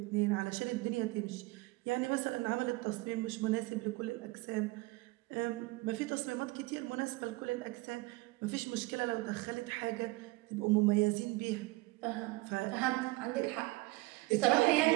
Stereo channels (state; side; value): quieter; left; 21.9 dB